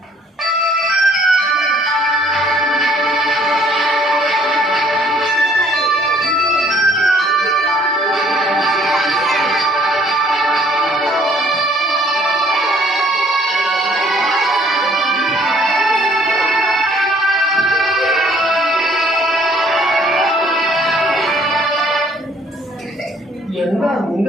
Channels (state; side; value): normal; both; correlation 0.61